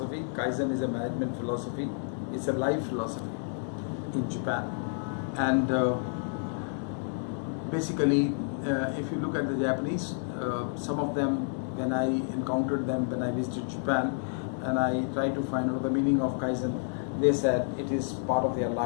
Kaizen is a management philosophy. It's a life philosophy in Japan. And basically, if you look at the Japanese, some of them, when I encountered them when I visited Japan, and I tried to find out the meaning of Kaizen, they said it is part of their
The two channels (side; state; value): right; silent; digital silence